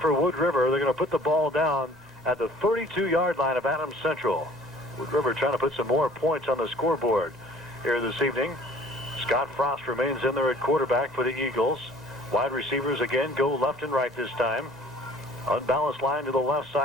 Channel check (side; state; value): both; normal; correlation 0.52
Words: Wood River. They're going to put the ball down at the 32-yard line of Adams Central. Wood River trying to put some more points on the scoreboard here this evening. Scott Frost remains in there at quarterback for the Eagles. Wide receivers again go left and right this time. Unbalanced line to the left